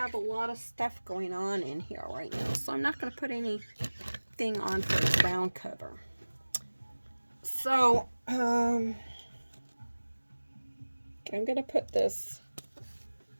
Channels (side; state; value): both; inverted; correlation -1.00